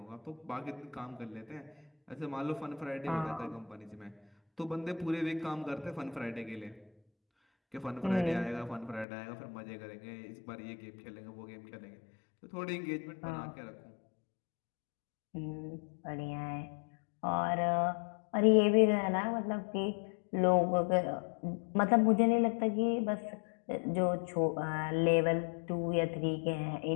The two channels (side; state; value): right; drops out; at 9.1 s